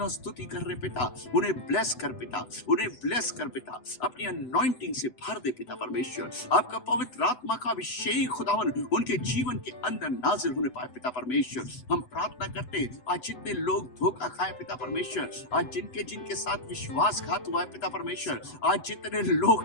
स्तुति कर रहे पिता, उन्हें ब्लेस कर पिता, उन्हें ब्लेस कर पिता, अपनी अनॉइंटिंग से भर दे पिता परमेश्वर। आपका पवित्र आत्मा का अभिषेक खुदावन उनके जीवन के अंदर नाजिल होने पाए पिता परमेश्वर। हम प्रार्थना करते आज जितने लोग धोखा खाए पिता परमेश्वर, आज जिनके साथ विश्वासघात हुआ है पिता परमेश्वर, आज जितने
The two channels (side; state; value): right; late; 8.0 ms